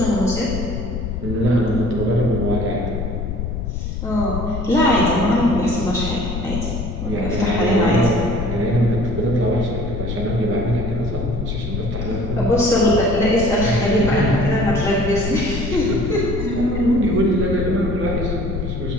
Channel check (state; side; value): noise; left; rumble, 4 dB below the sound